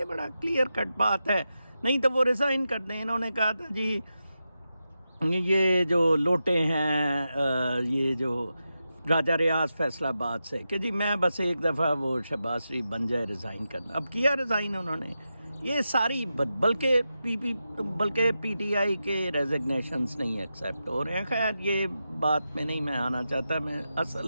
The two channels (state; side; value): inverted; both; correlation -0.90